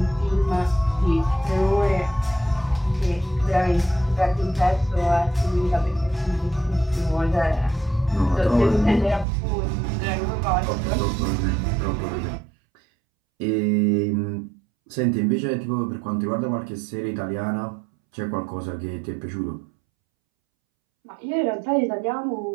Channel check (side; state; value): left; drops out; at 9.2 s